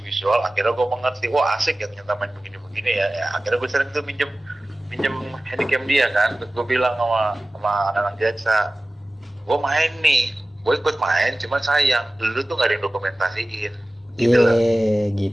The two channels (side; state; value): both; normal; correlation 0.97